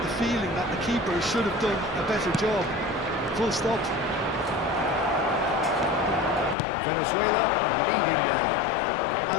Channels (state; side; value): drops out; right; at 6.6 s